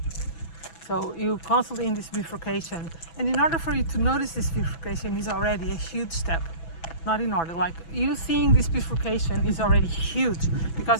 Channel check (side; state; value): right; late; 6.0 ms